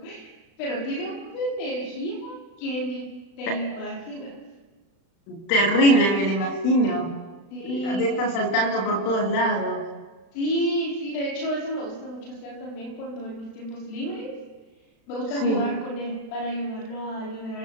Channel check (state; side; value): late; right; 36 ms